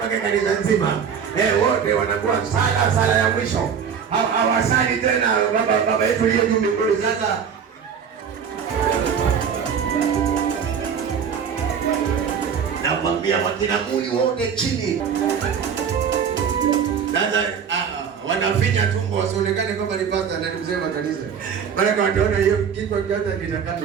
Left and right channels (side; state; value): left; quieter; 7.2 dB